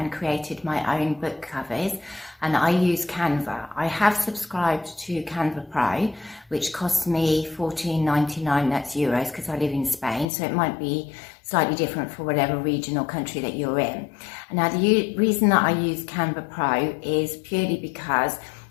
created my own book covers, and I use Canva. I have subscribed to Canva Pro, which costs me $14.99, that's euros, because I live in Spain, so it might be slightly different for whatever region or country that you're in. Now the reason that I use Canva Pro is purely because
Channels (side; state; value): right; drops out; at 10.2 s